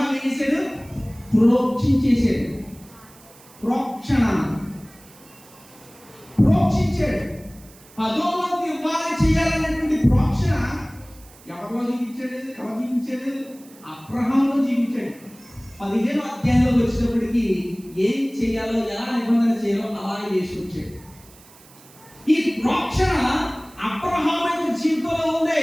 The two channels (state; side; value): noise; right; hiss, 24 dB below the sound